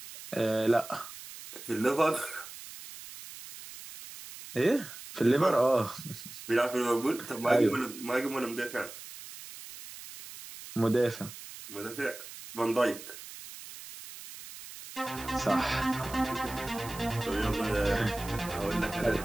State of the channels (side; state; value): right; noise; hiss, 14 dB below the sound